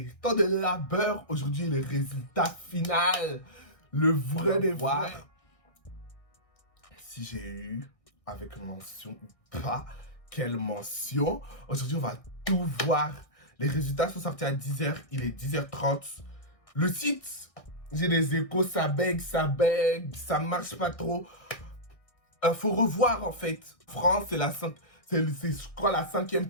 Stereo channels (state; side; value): late; right; 1.6 ms